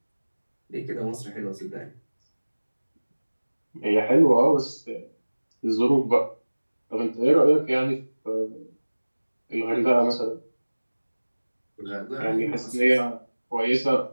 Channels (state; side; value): inverted; both; correlation -1.00